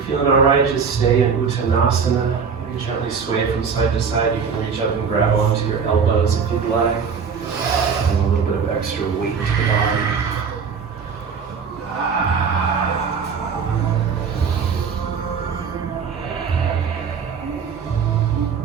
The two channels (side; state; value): left; quieter; 6.1 dB